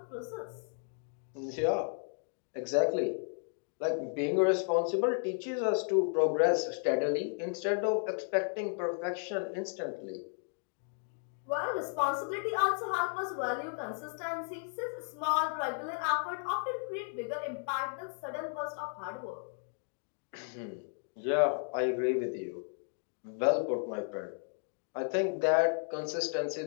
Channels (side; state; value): right; silent; 55 dB below the other